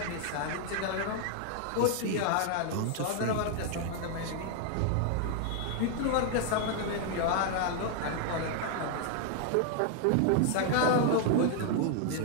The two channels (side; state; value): both; different; correlation 0.00